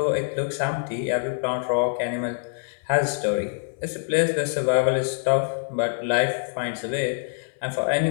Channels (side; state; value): right; silent; 62 dB below the other